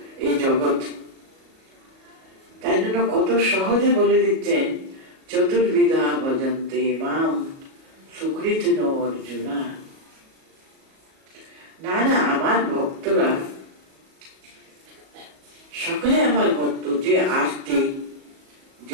এই জগৎ। তাই জন্য কত সহজে বলে দিচ্ছেন, চতুর্বিধা ভজন্তে মাম সুকৃতিন অর্জুনা। না না, আমার ভক্তরা সকলে আমার ভক্ত, যে আর্তি,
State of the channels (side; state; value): left; late; 37 ms